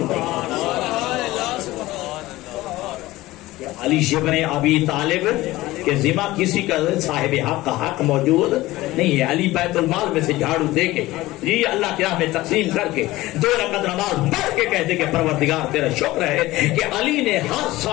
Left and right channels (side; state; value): right; quieter; 18.0 dB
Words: ہے. علی ابن ابی طالب کے ذمہ کسی کا صاحب حق کا حق موجود نہیں ہے. علی بیت المال میں سے جھاڑو دے کے جی اللہ کی راہ میں تقسیم کر کے 2 رکعت نماز پڑھ کے کہتے کہ پروردگار تیرا شکر ہے کہ علی نے ہر